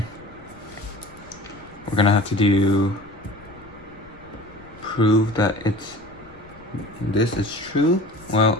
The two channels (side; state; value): left; noise; rumble, 24 dB below the sound